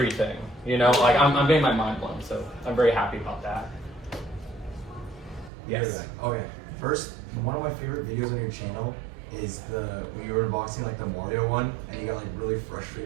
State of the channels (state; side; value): drops out; left; at 5.5 s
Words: Like I'm getting my mind blown, so I'm very happy about that. Yes. Okay. First, one of my favorite videos on your channel is when you were unboxing like the Mario one, and you got like really